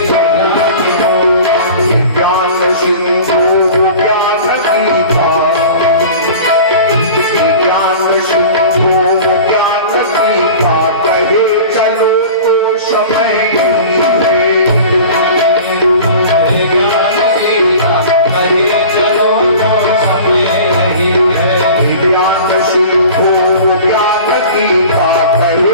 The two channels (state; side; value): inverted; both; correlation -0.40